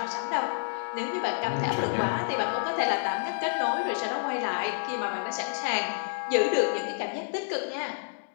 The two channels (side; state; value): right; silent; digital silence